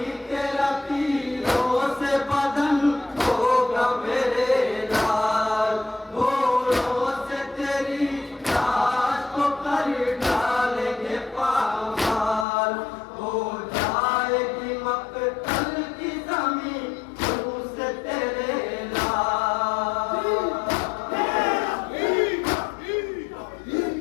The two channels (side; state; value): right; drops out; at 12.5 s